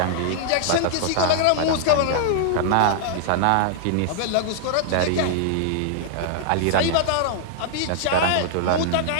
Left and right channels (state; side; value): different; both; correlation -0.01